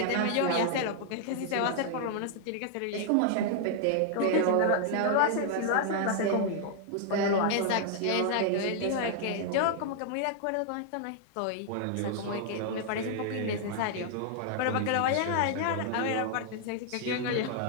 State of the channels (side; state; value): both; different; correlation -0.01